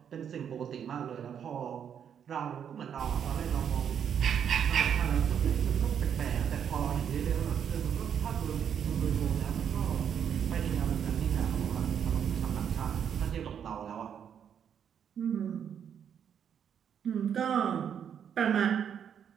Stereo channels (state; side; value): quieter; left; 8.3 dB